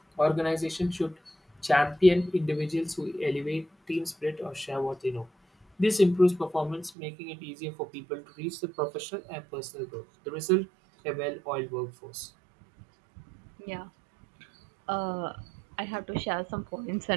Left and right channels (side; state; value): left; drops out; at 6.9 s